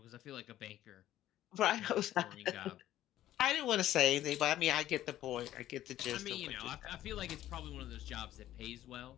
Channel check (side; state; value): right; quieter; 13.2 dB